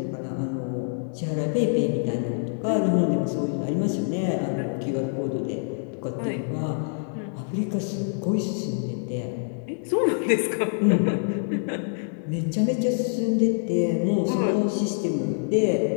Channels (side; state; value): right; silent; digital silence